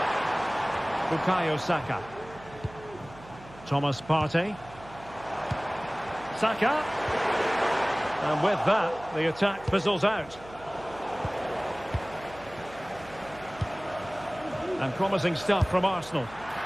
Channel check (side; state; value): right; noise; hum, 19 dB below the sound